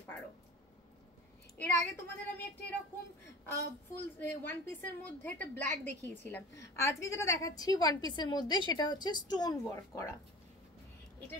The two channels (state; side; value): normal; both; correlation 0.37